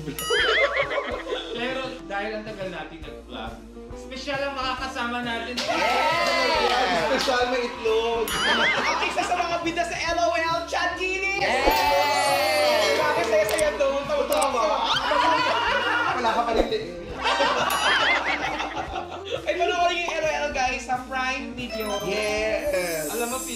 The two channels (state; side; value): identical; both; correlation 1.00